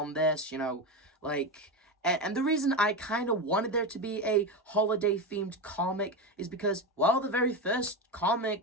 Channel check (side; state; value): both; normal; correlation 0.17